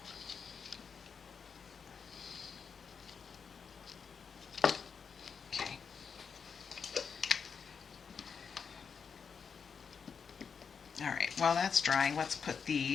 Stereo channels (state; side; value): quieter; right; 6.2 dB